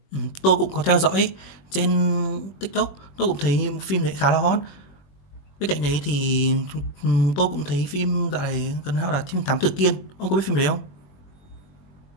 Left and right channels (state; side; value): late; right; 21 ms